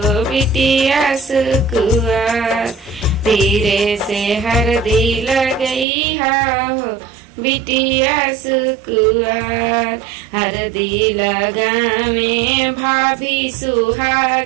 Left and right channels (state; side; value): drops out; left; at 5.9 s